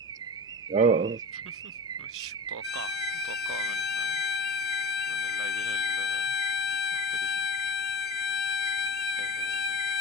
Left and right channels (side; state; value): both; normal; correlation 0.34